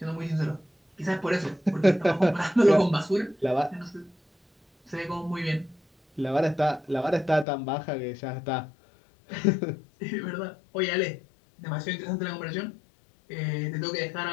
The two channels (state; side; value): drops out; right; at 7.5 s